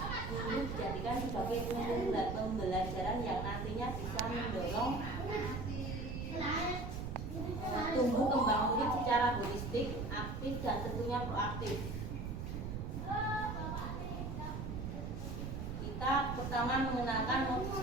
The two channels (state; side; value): noise; right; rumble, 5 dB below the sound